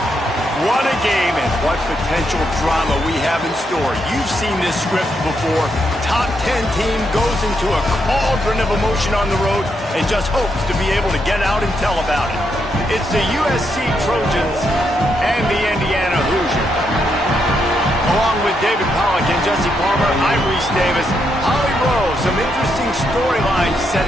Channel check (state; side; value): normal; both; correlation 0.79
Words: What a game and what potential drama we have in store. You've seen this script before. Top 10 team goes into a cauldron of emotion on the road and just hopes to be able to get out and tell about it. It's the USC Trojans and the Indiana Hoosiers. Along with David Pollack and Jesse Palmer, I'm Reese Davis. Holly Rowe, some interesting storylines